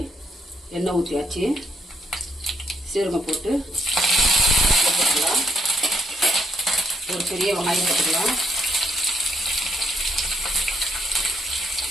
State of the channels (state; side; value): normal; both; correlation 0.75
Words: எண்ணெய் ஊற்றியாச்சு. சீரகம் போட்டு போட்டுக்கலாம். ஒரு பெரிய வெங்காயம் போட்டுக்கலாம்.